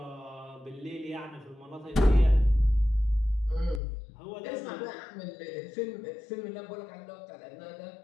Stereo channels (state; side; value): drops out; right; at 3.8 s